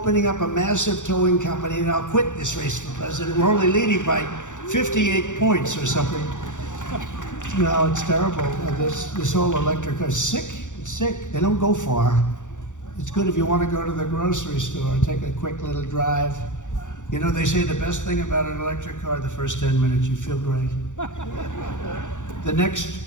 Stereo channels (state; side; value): late; right; 0.86 ms